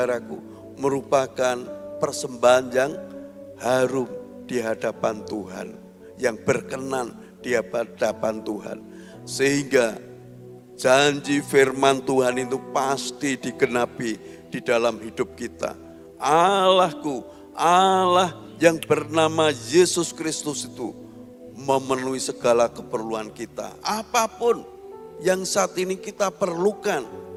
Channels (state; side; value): identical; both; correlation 1.00